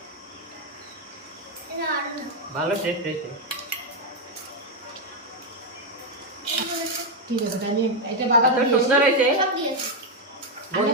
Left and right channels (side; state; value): both; normal; correlation 0.03